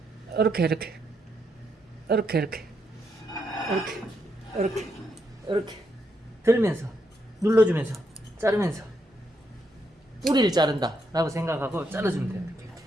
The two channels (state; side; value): normal; both; correlation 0.79